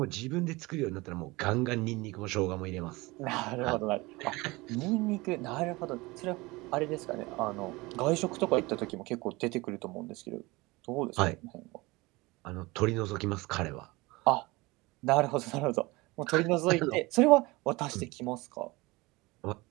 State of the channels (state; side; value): quieter; left; 22.7 dB